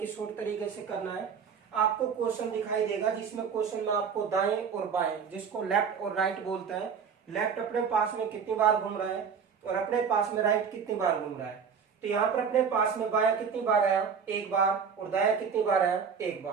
शॉर्ट तरीके से करना है। आपको क्वेश्चन दिखाई देगा, जिसमें क्वेश्चन में आपको दाएं और बाएं, जिसको लेफ्ट और राइट बोलते हैं, लेफ्ट अपने पास में कितनी बार घूम रहा है और अपने पास में राइट कितनी बार घूम रहा है। तो यहाँ पर अपने पास में बायां कितनी बार आया, एक बार, और दायां कितनी बार आया, एक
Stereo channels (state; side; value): quieter; left; 6.5 dB